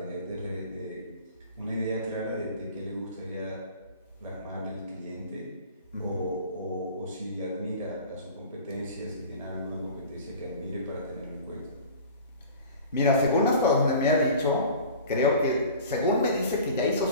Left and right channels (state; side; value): inverted; both; correlation -0.41